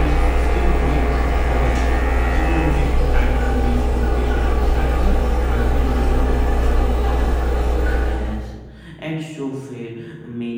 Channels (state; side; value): identical; both; correlation 1.00